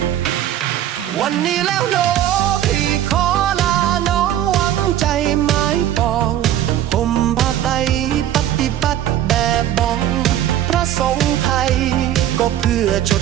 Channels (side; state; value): left; quieter; 11.7 dB